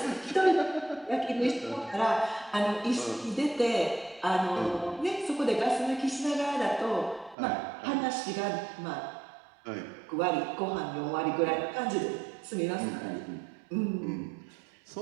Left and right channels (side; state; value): left; drops out; at 7.4 s